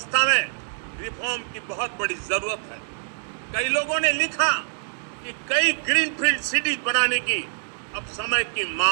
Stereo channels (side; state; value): left; silent; digital silence